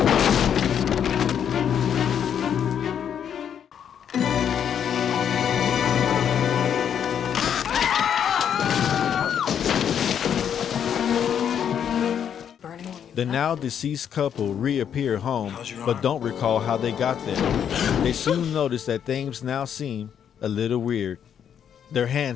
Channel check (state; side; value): quieter; right; 8.6 dB